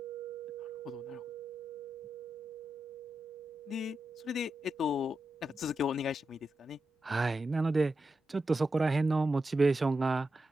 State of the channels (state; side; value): normal; both; correlation 0.88